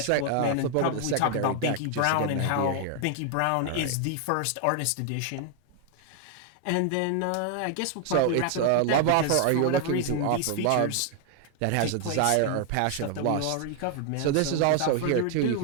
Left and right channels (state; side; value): different; both; correlation 0.00